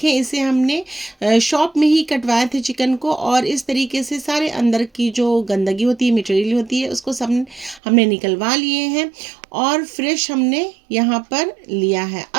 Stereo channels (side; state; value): left; drops out; at 7.8 s